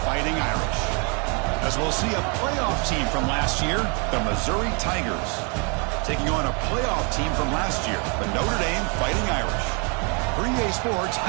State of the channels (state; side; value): quieter; left; 35.0 dB